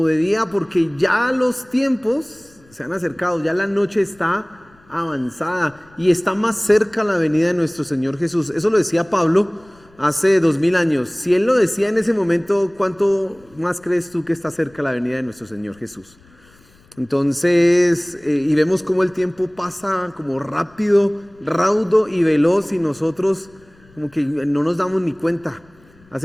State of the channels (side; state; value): left; noise; rumble, 29 dB below the sound